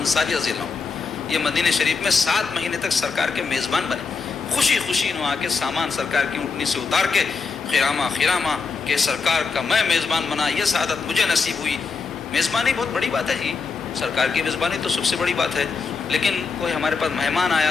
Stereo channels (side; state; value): right; quieter; 4.8 dB